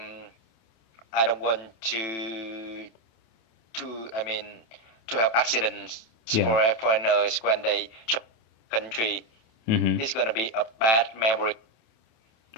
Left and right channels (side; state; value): right; late; 27 ms